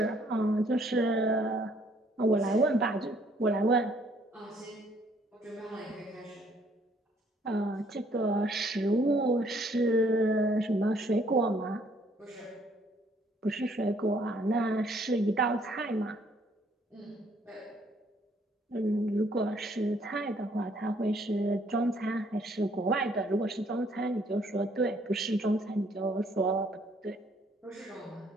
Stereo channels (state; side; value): normal; both; correlation 0.64